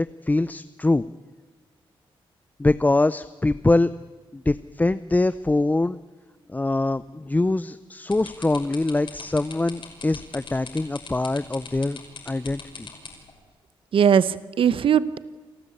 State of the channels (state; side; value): normal; both; correlation 0.85